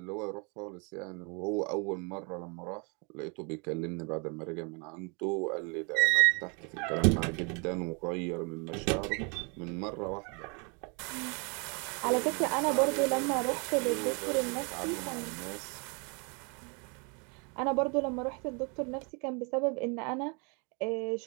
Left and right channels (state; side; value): quieter; left; 33.9 dB